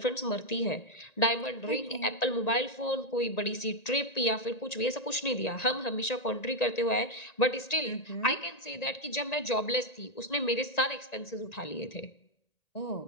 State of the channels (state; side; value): late; right; 1.9 ms